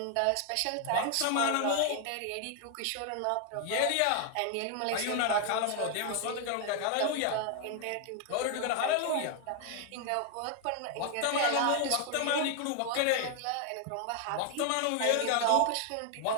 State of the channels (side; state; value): both; different; correlation 0.00